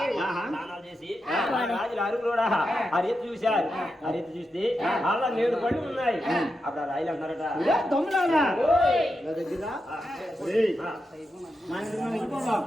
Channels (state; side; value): normal; both; correlation 0.87